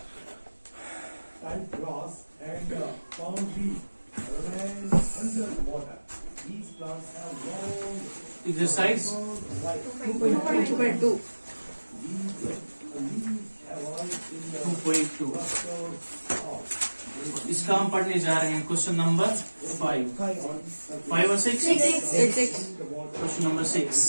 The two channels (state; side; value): inverted; both; correlation -1.00